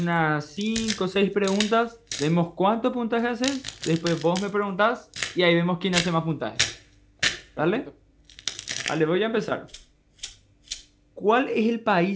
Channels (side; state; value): both; identical; correlation 1.00